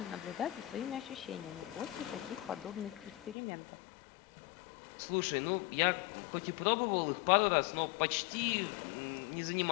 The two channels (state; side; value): drops out; right; at 3.4 s